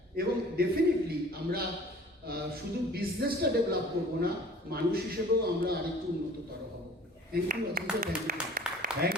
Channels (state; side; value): normal; both; correlation 0.48